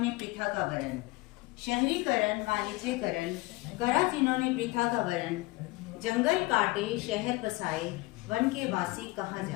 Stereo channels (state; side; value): quieter; right; 22.1 dB